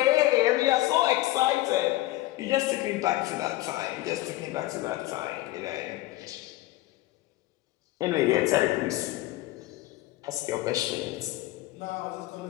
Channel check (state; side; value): quieter; right; 17.5 dB